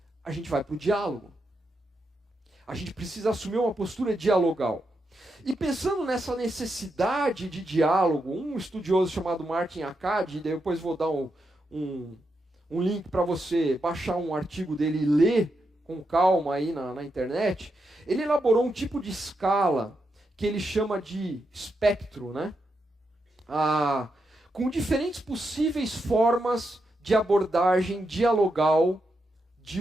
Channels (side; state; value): both; normal; correlation 0.84